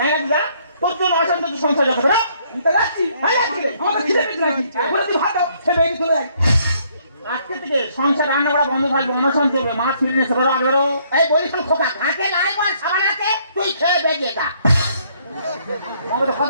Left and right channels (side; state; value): both; inverted; correlation -0.66